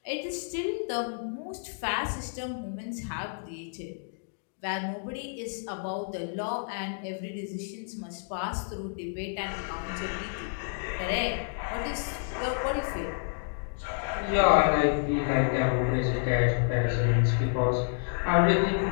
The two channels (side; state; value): right; silent; digital silence